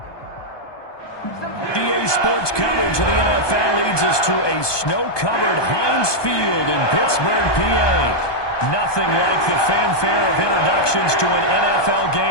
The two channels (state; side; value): late; right; 1.2 ms